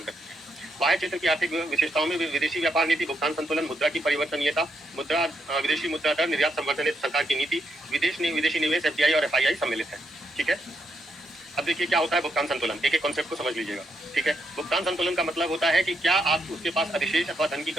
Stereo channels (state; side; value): normal; both; correlation 0.78